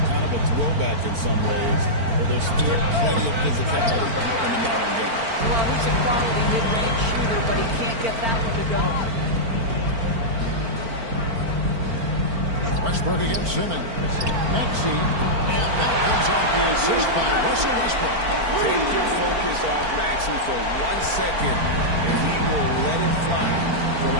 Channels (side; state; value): left; late; 4.4 ms